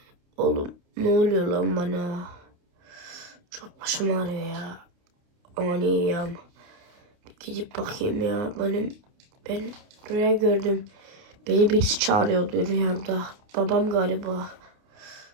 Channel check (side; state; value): left; late; 29 ms